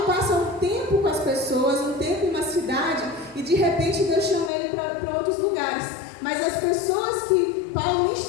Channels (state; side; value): drops out; right; at 4.5 s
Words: passa um tempo com as pessoas, um tempo em uma cidade, e de repente Deus chama ele para outros lugares. Mas as pessoas que Paulo